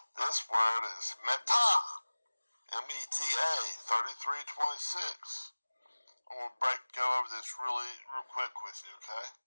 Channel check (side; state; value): both; inverted; correlation -1.00